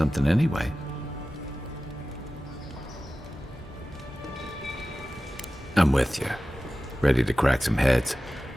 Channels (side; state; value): both; normal; correlation 0.95